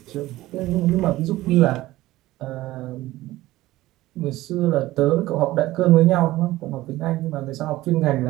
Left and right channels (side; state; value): left; quieter; 16.9 dB